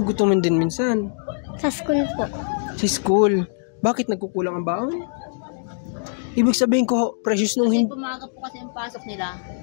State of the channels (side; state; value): right; silent; digital silence